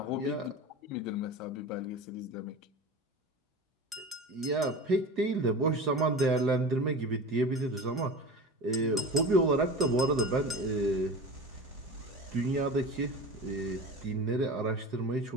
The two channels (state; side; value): normal; both; correlation 0.32